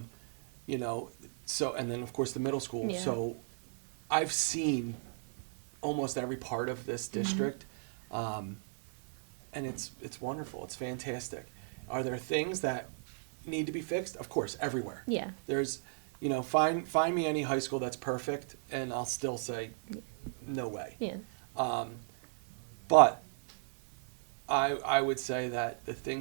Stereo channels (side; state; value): left; silent; 54 dB below the other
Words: and then of course the middle school. Yeah. So I've seen almost every part of this district. And it's wonderful. It's fantastic. Are there things that need to be fixed? Of course, everywhere. Yeah. There's, find me any high school that's perfect, and I'll still say, no way. Yeah. But I would say that the